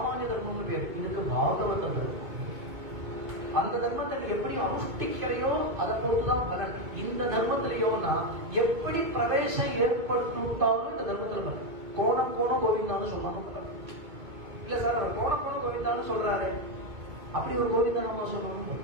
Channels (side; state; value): left; late; 2.2 ms